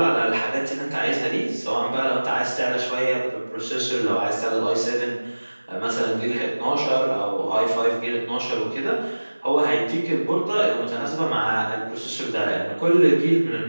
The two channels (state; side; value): inverted; both; correlation -1.00